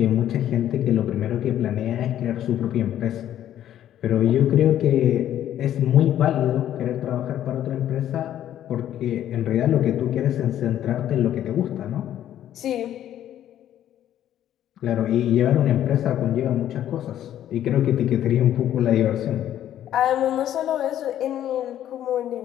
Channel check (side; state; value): right; quieter; 11.5 dB